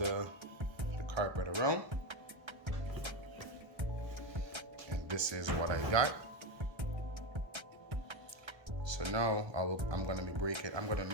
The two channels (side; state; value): left; late; 1.3 ms